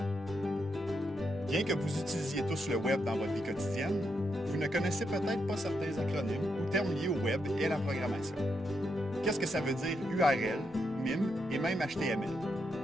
Bien que vous utilisiez tous le web dans votre vie quotidienne, vous ne connaissez peut-être pas certains acronymes ou termes liés au web et à la programmation. Qu'est-ce que ça veut dire URL, MIM et même HTML?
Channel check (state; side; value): normal; both; correlation 0.81